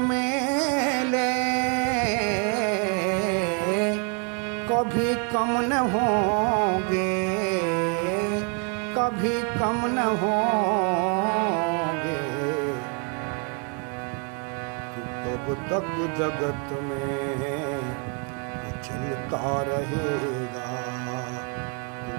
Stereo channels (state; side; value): quieter; left; 37.2 dB